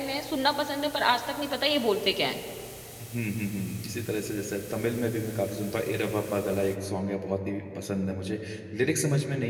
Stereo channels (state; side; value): identical; both; correlation 1.00